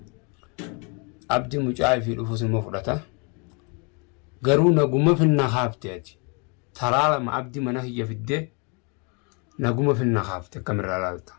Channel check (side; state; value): right; quieter; 33.7 dB